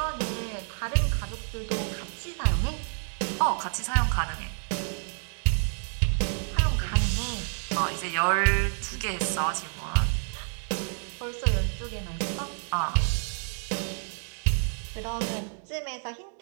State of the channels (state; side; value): silent; left; 59 dB below the other